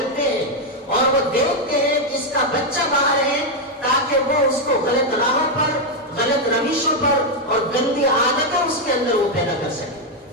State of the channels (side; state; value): both; normal; correlation 0.02